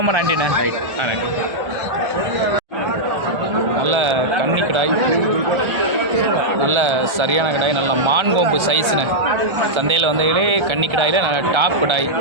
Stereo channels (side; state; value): left; late; 1.3 ms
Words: நன்றிண்ணே. நன்றி. நல்ல கன்னி கிடாய், நல்ல சரியான கிடாய், நல்ல மான்கொம்பு சைஸ்ண்ணே. சந்தையில் வந்ததிலே கன்னி கிடாயில் நல்ல டாப் கிடாயை